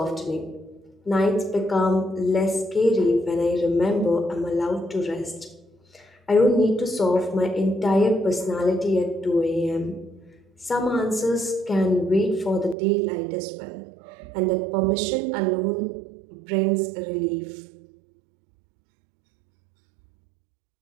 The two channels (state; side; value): drops out; left; at 12.8 s